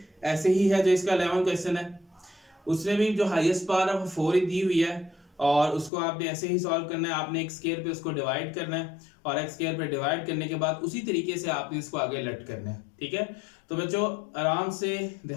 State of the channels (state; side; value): drops out; right; at 5.9 s